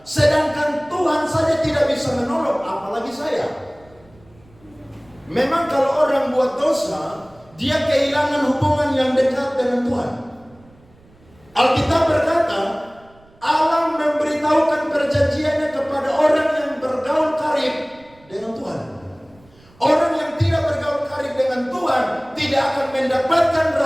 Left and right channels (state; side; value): noise; right; rumble, 28 dB below the sound